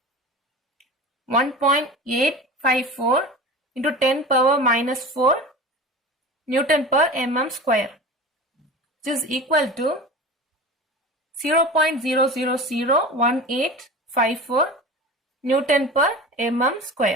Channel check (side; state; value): both; normal; correlation 0.33